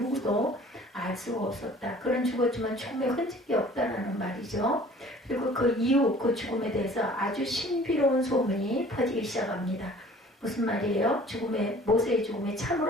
알 수가 없었다. 그는 죽었지만 죽음의 흔적이 없다라는 말이죠. 그리고 그 이후 그 죽음에 대해서 아주 신비로운 소문이 퍼지기 시작합니다. 무슨 말이에요? 모세의 죽음이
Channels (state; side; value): normal; both; correlation 0.50